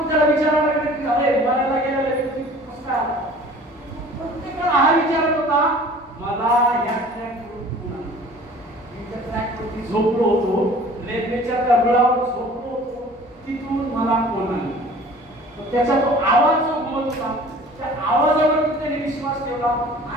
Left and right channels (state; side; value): normal; both; correlation 0.47